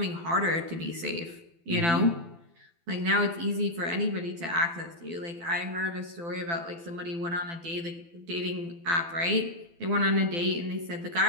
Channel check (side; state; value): left; late; 12 ms